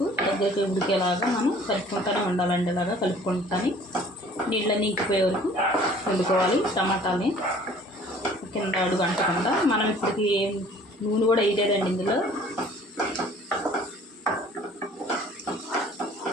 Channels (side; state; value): both; normal; correlation 0.52